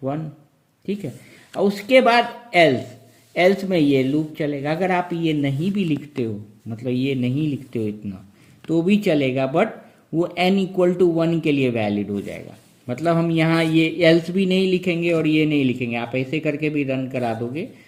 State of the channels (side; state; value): both; identical; correlation 1.00